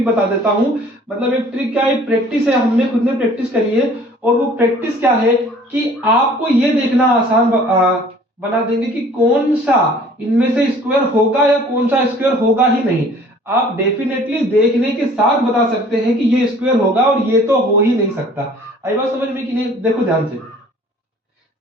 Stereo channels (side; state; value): both; normal; correlation 0.52